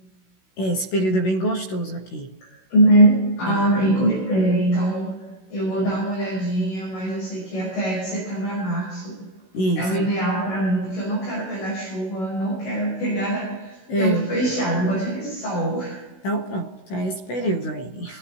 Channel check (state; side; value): late; right; 16 ms